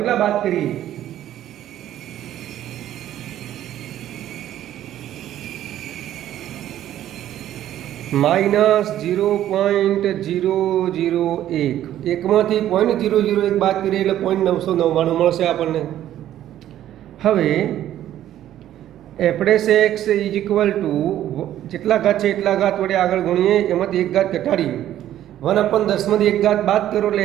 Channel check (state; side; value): quieter; left; 12.2 dB